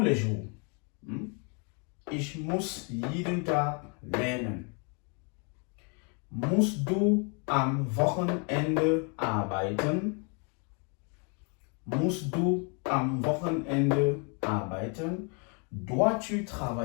jours. Ich muss jeden Tag lernen. Musst du am Wochenende arbeiten? Musst du am Wochenende arbeiten? Dois-tu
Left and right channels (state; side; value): quieter; right; 36.2 dB